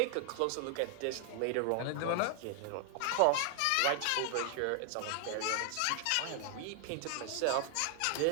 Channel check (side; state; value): both; different; correlation 0.00